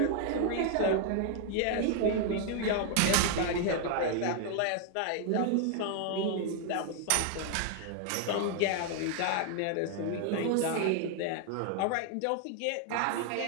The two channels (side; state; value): both; different; correlation 0.00